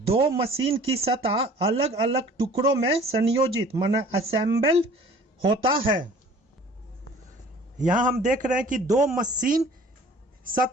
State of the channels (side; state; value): both; normal; correlation 0.49